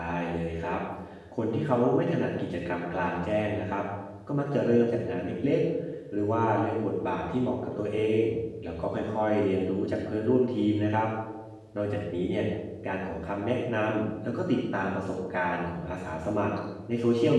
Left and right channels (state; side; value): identical; both; correlation 1.00